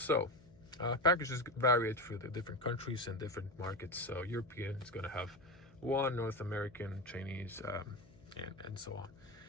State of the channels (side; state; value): left; noise; hum, 24 dB below the sound